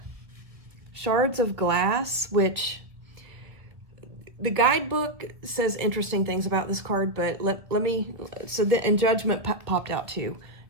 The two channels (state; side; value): late; left; 1.8 ms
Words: Shards of Glass, which the guidebook says interesting things about this card, but let me, and Judgment popped out too.